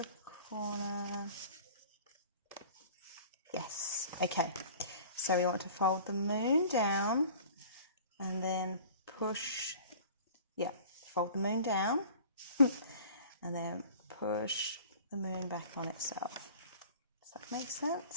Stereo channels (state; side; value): inverted; both; correlation -0.45